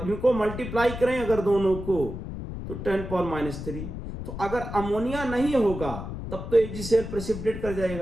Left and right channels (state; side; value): noise; left; rumble, 8 dB below the sound